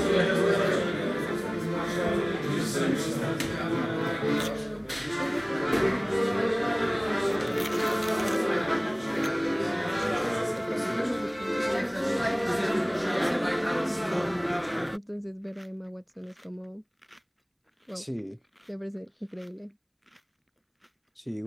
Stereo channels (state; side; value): identical; both; correlation 1.00